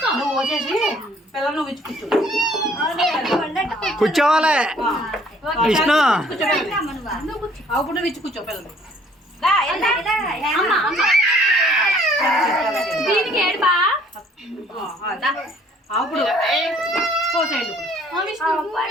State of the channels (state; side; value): normal; both; correlation 0.59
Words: కూర్చోవాలి కూర్చోవాలి విష్ణు అప్పుడు విచ్చి కూర్చో పిల్లలు అప్పుడు పోసేయండి